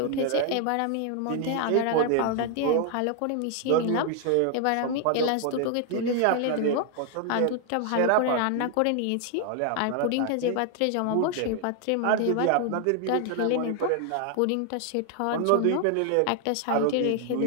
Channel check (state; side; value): different; both; correlation 0.00